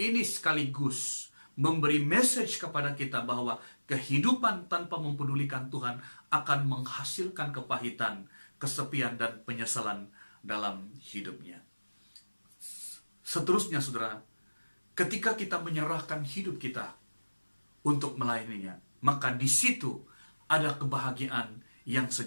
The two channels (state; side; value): inverted; both; correlation -1.00